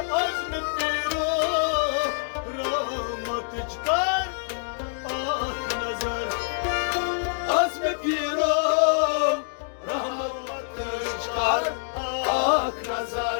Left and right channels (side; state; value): right; silent; digital silence